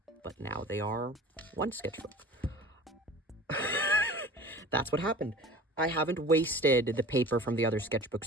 but now they are one sketchbook. That's what happened. I haven't wasted the paper from the other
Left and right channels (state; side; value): normal; both; correlation 0.41